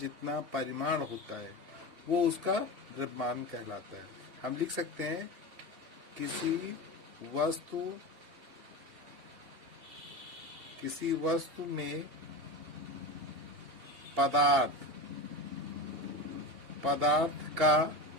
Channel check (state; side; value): late; left; 3.1 ms